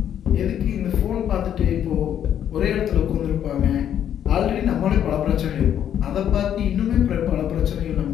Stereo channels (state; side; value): quieter; right; 9.8 dB